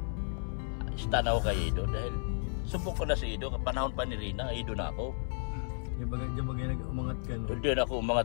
stand ako kay Ido dahil subok ko na si Ido, panahon pa ni Rina, Ido na ako. Yung bagay umangat ka no. Hindi na ako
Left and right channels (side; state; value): right; silent; 56 dB below the other